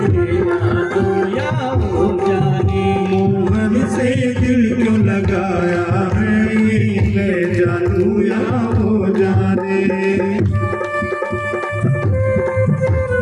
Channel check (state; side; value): identical; both; correlation 1.00